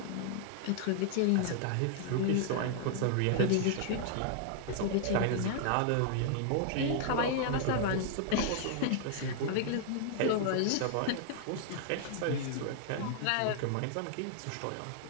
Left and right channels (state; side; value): different; both; correlation 0.00